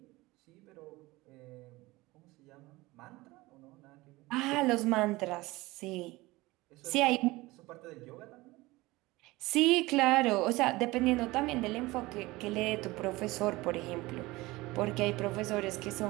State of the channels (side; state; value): left; quieter; 20.5 dB